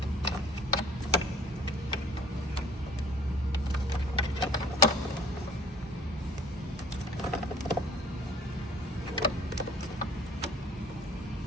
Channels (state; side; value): normal; both; correlation 0.52